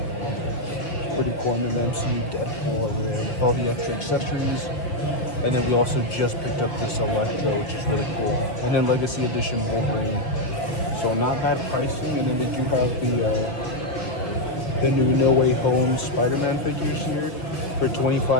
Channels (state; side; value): late; right; 5.7 ms